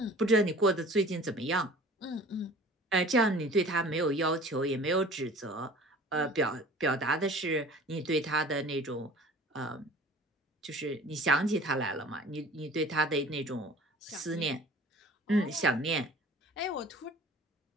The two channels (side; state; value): both; normal; correlation 0.45